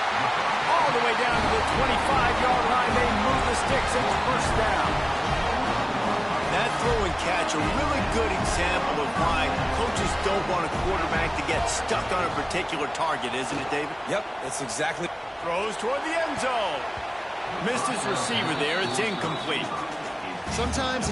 All the way down to the 25-yard line. They move the sticks and it's first down. That throw and catch, a really good example of why coaches don't want a quarterback to get stuck on a particular target, isn't it, David? Yep, that's exactly. Throw throws toward the end zone. Missed his receiver there. It's incomplete. Sometimes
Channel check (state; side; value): identical; both; correlation 1.00